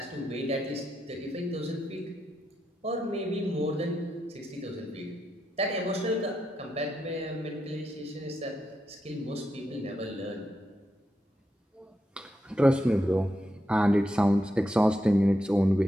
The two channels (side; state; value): both; normal; correlation 0.84